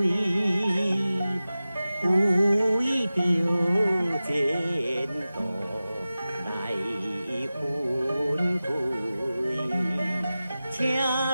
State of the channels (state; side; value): inverted; both; correlation -0.96